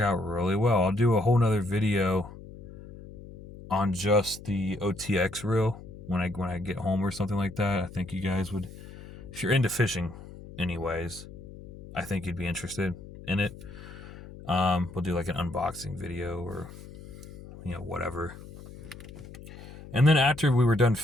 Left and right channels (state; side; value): noise; left; hum, 16 dB below the sound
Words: really well. I'll do a whole nother video on just the OTX reel when I get home or something like that. I think you guys would, if you're into fishing anyways, I think you'd be interested in it. We'll do like an unboxing video or, whatever. And then after we were done